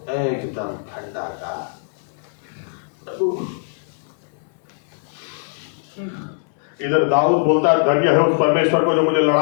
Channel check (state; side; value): silent; right; digital silence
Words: एकदम ठंडा का इधर दाऊद बोलता है धन्य है उस परमेश्वर को जो मुझे